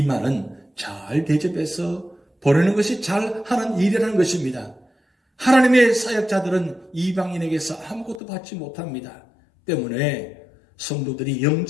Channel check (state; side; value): drops out; right; at 8.2 s